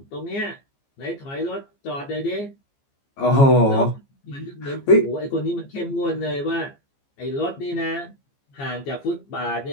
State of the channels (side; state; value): right; late; 15 ms